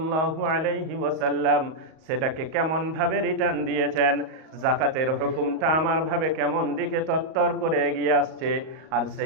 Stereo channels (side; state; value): left; late; 38 ms